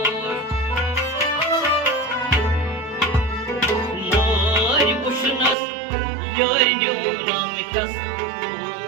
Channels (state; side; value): drops out; left; at 5.6 s